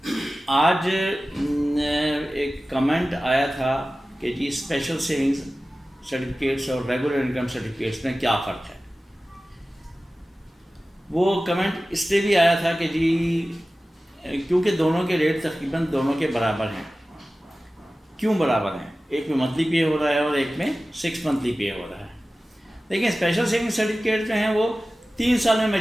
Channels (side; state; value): both; normal; correlation 0.96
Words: آج ایک کمنٹ آیا تھا کہ جی اسپیشل سیونگز سرٹیفکیٹس اور ریگولر انکم سرٹیفکیٹس میں کیا فرق ہے. وہ کمنٹ اس لیے بھی آیا تھا کہ جی کیونکہ دونوں کے ریٹ تقریباً دونوں کے برابر ہیں. کیوں برابر ہیں؟ ایک میں منتھلی پے ہو رہا ہے اور ایک میں 6 منتھلی پے ہو رہا ہے. لیکن اسپیشل سیونگ سرٹیفکیٹ جو ہیں وہ 3 سال میں